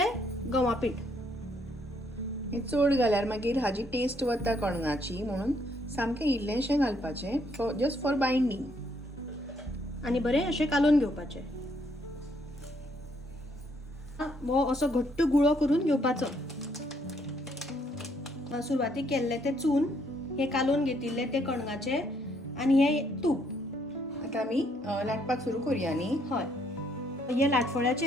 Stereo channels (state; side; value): normal; both; correlation 0.70